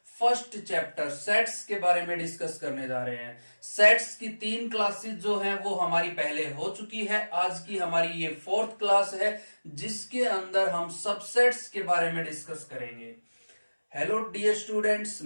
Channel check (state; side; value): inverted; both; correlation -1.00